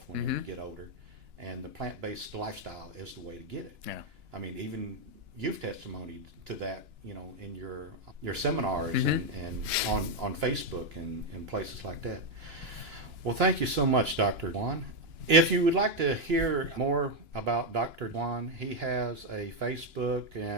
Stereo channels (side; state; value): left; late; 2.9 ms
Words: whenever you get older, and the plant-based lifestyle is the way to get it. I mean, even you've testimonied to that, you know, in your seminars and on Facebook and places like that. Well, thank you so much, Dr. Juan. If you would like to hear more about Dr. Juan, he has a Facebook,